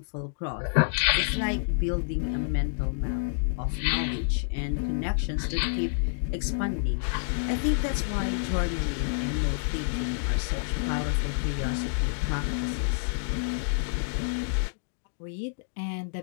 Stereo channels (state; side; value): silent; right; digital silence